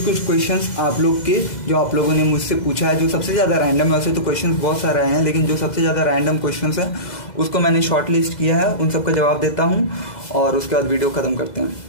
क्वेश्चंस आप लोग के जो आप लोगों ने मुझसे पूछा है, जो सबसे ज़्यादा रैंडम है, वैसे तो क्वेश्चंस बहुत सारे हैं, लेकिन जो सबसे ज़्यादा रैंडम क्वेश्चंस हैं उसको मैंने शॉर्ट लिस्ट किया है, उन सबका जवाब देता हूँ और उसके बाद वीडियो ख़त्म करते हैं।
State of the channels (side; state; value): right; late; 2.0 ms